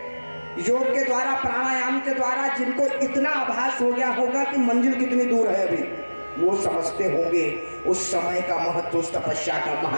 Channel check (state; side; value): inverted; both; correlation -1.00